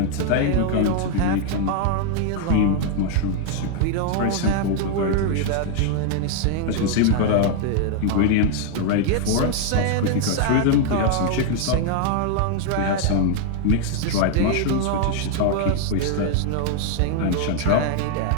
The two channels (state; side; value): different; both; correlation 0.00